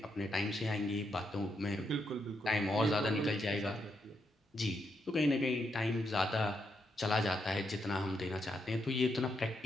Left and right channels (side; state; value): both; normal; correlation 0.80